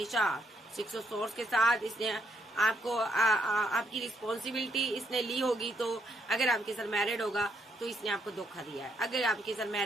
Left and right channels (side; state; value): both; normal; correlation 0.74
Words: 6 ऑफ सोर्स के साथ इसने आपको आपकी रिस्पॉन्सिबिलिटी इसने ली होगी। तो अगर आपके साथ मैरिड होगा तो इसने आपको धोखा दिया है। अगर आपके साथ